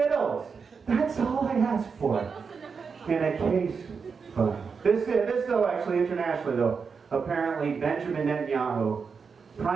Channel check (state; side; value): quieter; left; 5.6 dB